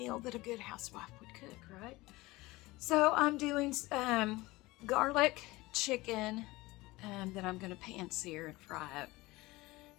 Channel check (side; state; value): right; quieter; 20.6 dB